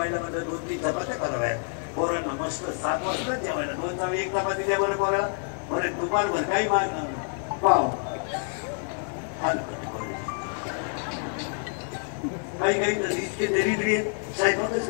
म्हणजे 2-3 चपात्या कराव्या पोरांना मस्त 7 वाजता जेवायला 1 चपाती द्या बरं पोराला बरं दुपारभर काही मागणार पाव काही इतके दरिद्री साहेबातच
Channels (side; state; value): right; silent; 55 dB below the other